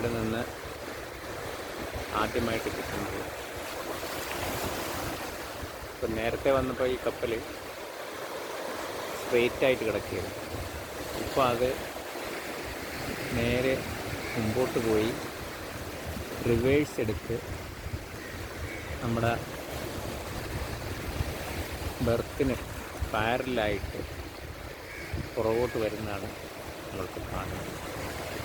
നിന്ന് ആദ്യമായിട്ട് കിട്ടുന്നത്. ഇപ്പം നേരത്തെ വന്നപ്പോൾ ഈ കപ്പൽ സ്ട്രെയിറ്റായിട്ട് കിടക്കുകയാണ്. ഇപ്പോൾ അത് നേരെ മുമ്പോട്ട് പോയി റിവേഴ്സ് എടുത്ത് നമ്മുടെ ബെർത്തിന് പാരലായിട്ട് പുറകോട്ട് വരുന്നതാണ് നമ്മൾക്ക് കാണുന്നത്.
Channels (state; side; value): identical; both; correlation 1.00